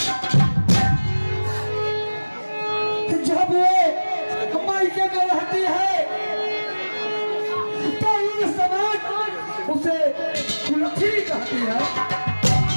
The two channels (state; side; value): inverted; both; correlation -1.00